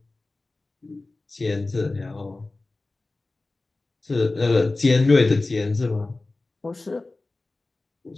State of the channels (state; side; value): quieter; right; 3.2 dB